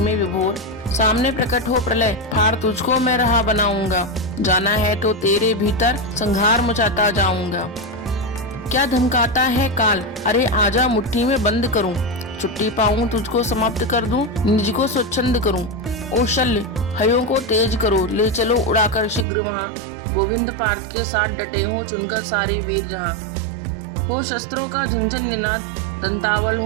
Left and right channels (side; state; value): left; drops out; at 19.2 s